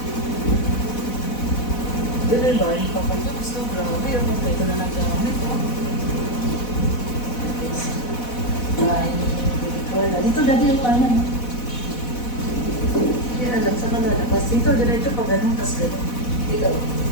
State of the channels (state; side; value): late; right; 4.1 ms